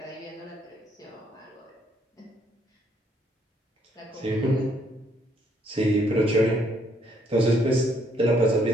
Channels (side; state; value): both; normal; correlation 0.69